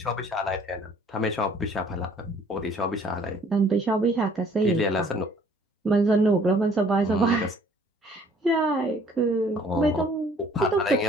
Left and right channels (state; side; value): normal; both; correlation 0.57